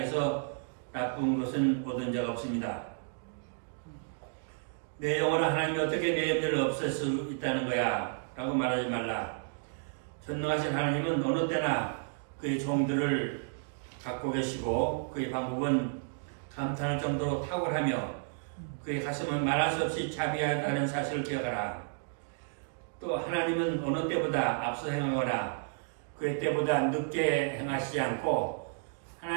나쁜 것은 얻은 적 없습니다. 내 영혼은 하나님이 어떻게 내 염려를 없앨 수 있다는 거야 라고 말하지 말라. 전능하신 하나님은 어느 때나 그의 종들을 갖고 계시고 그의 방법은 감탄할 정도로 탁월하며 그의 가슴은 말할 수 없이 자비하다는 사실을 기억하라. 또 하나님은 어느 때보다 앞서 행하거나 그의 때보다 늦게 행하시지 않고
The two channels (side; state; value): left; silent; digital silence